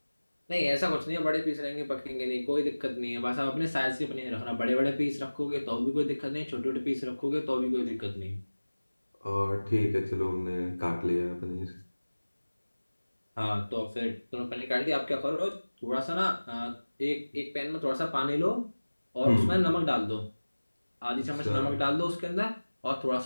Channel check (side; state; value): both; inverted; correlation -1.00